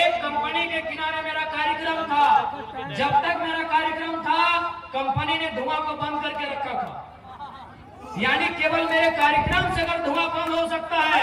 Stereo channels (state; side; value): identical; both; correlation 1.00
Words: कंपनी के किनारे मेरा कार्यक्रम था, जब तक मेरा कार्यक्रम था कंपनी ने धुआं को बंद करके रखा था। यानी केवल मेरे कार्यक्रम से अगर धुआं बंद हो सकता